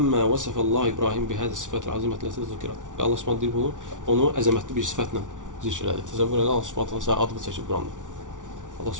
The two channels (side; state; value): left; late; 0.87 ms